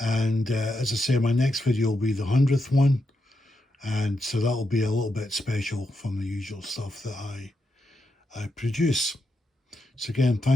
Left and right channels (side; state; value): both; normal; correlation 0.84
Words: and as I say, my next video will be the 100th one, And so that'll be a little bit special from the usual stuff that I produce. So again,